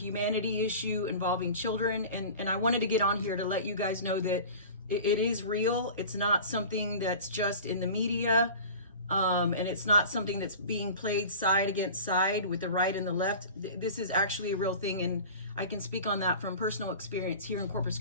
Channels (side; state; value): both; inverted; correlation -0.38